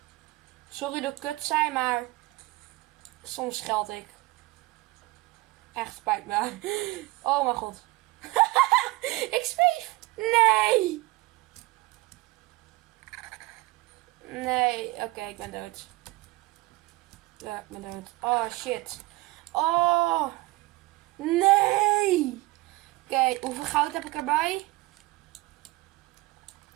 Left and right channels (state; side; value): quieter; left; 21.0 dB